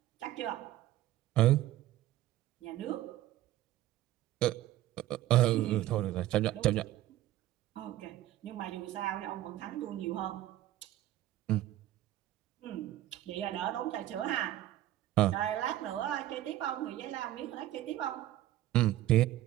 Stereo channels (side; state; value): left; quieter; 14.3 dB